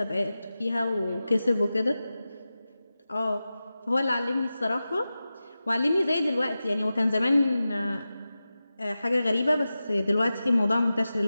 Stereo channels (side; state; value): both; inverted; correlation -0.94